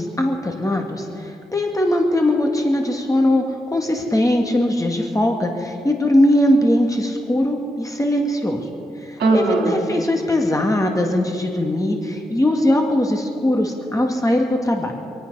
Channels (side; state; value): both; normal; correlation 0.86